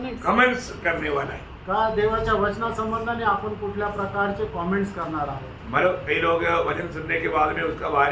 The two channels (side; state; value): both; identical; correlation 1.00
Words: कमेंट्स करने वाला है। का देवाच्या वचना संबंधाने आपण कुठल्या प्रकारचे कमेंट्स करणार आहोत। मतलब कई लोग वचन सुनने के बाद में उसका